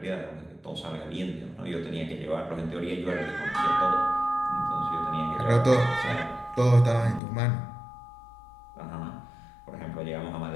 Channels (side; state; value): right; drops out; at 7.2 s